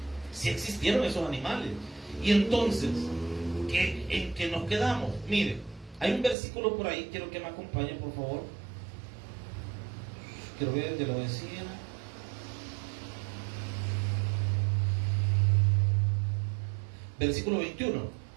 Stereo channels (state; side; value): drops out; left; at 6.4 s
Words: Sí existieron esos animales. Y entonces, ¿en qué nos quedamos? Mire, hay un versículo por ahí, quiero que me acompañe, por favor. Quiero ver, ya lo decía. Versículo 21.